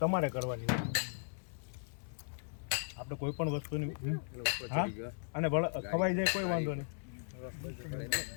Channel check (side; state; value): right; silent; digital silence